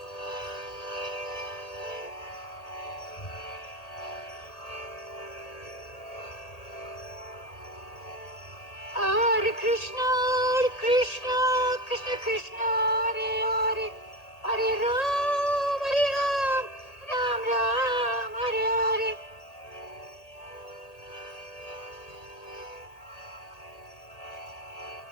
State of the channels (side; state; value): right; late; 1.8 ms